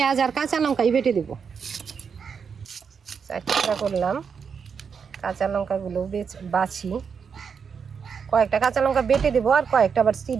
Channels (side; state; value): left; quieter; 6.4 dB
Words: আর কাঁচা লঙ্কাই বেটে দেব। 4 টুকরা করলাম। কাঁচা লঙ্কাগুলো বাছি, কয়েকটা কাঁচা লঙ্কা বেটে দেবো আর কয়েকটা আবার